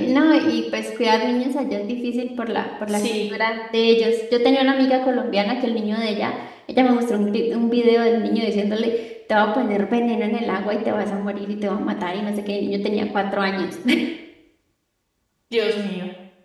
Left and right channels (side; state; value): both; identical; correlation 1.00